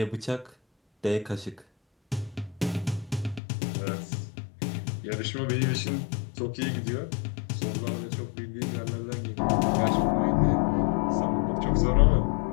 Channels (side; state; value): right; drops out; at 3.4 s